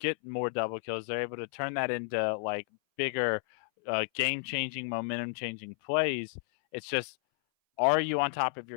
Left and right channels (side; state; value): right; silent; 57 dB below the other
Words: more double kills. They're able to turn that into like bigger game-changing, momentum-changing plays. It's just, are you on top of